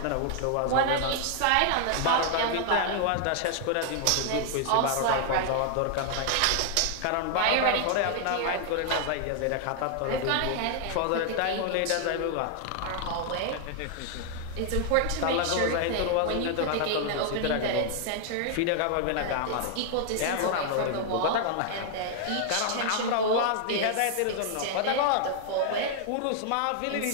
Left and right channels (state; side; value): different; both; correlation 0.00